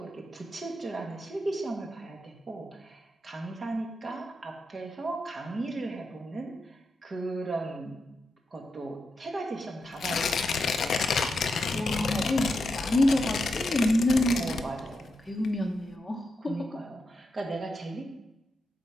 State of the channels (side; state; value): both; normal; correlation 0.86